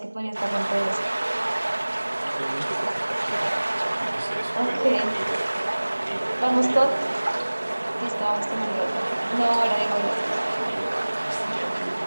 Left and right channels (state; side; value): inverted; both; correlation -1.00